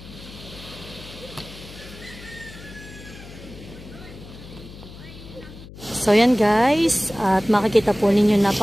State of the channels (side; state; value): left; noise; hum, 16 dB below the sound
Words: So yan guys, at makikita po ninyo